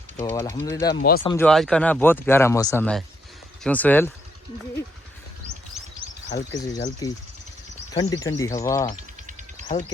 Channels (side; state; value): both; normal; correlation 0.74